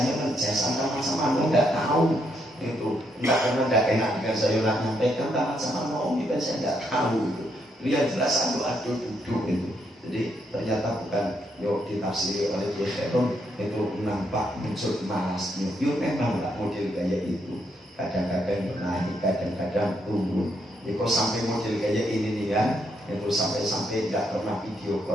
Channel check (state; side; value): normal; both; correlation 0.76